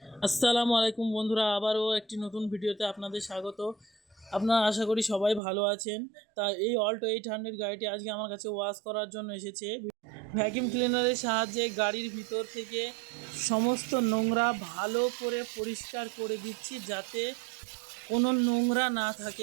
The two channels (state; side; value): drops out; left; at 5.4 s